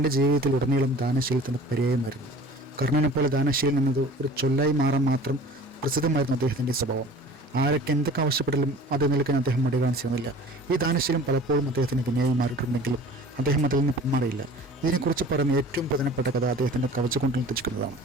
ജീവിതത്തിൽ ഉടനീളം ദാനശീലത്തിൻ്റെ പര്യായമായിരുന്നു. കർണനെപ്പോലെ ദാനശീലം എന്നത് ഒരു ചൊല്ലായി മാറാൻ മാത്രം പ്രസിദ്ധമായിരുന്നു അദ്ദേഹത്തിൻ്റെ സ്വഭാവം. ആരൊക്കെ എന്തൊക്കെ ആവശ്യപ്പെട്ടാലും അത് നിൽക്കാൻ അദ്ദേഹം മടി കാണിച്ചിരുന്നില്ല. ഈ ദാനശീലം പലപ്പോഴും അദ്ദേഹത്തിന് വിനയായി മാറിയിട്ടുണ്ടെങ്കിലും അദ്ദേഹം അതിൽ നിന്ന് പിന്മാറിയില്ല. ഇതിനെക്കുറിച്ച് പറയുന്ന ഏറ്റവും പ്രധാനപ്പെട്ട കഥ അദ്ദേഹത്തിൻ്റെ കവചകുണ്ടലം തെറ്റിക്കുന്നതാണ്.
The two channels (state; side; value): normal; both; correlation 0.44